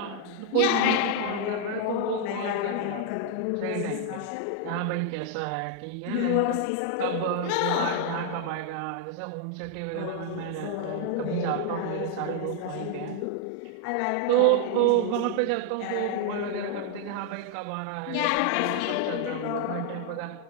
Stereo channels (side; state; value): both; different; correlation 0.00